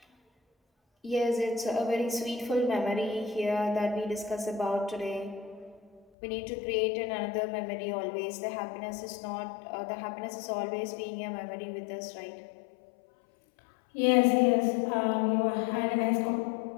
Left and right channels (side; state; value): right; drops out; at 6.1 s